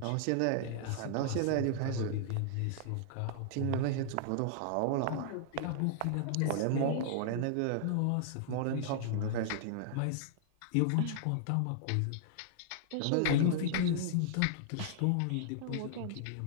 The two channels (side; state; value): both; different; correlation -0.01